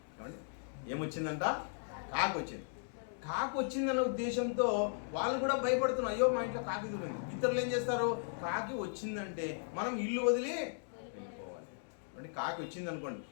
ఏమండి, ఏమొచ్చిందంట? కాకి వచ్చింది. కాకి వచ్చిందన్న ఉద్దేశంతో వాళ్ళు కూడా భయపడుతున్నారు. అయ్యో మా ఇంట్లో కాకి దొరింది. ఇతరులు ఏం చేస్తారు? కాకి వచ్చిందంటే మనం ఇల్లు వదిలి వెళ్ళిపోవాలి. అంటే కాకి వచ్చింది అనుకోండి,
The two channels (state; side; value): silent; right; digital silence